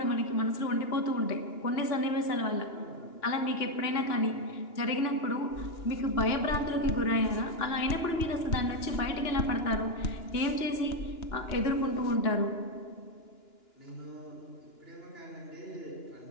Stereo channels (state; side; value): late; right; 2.9 ms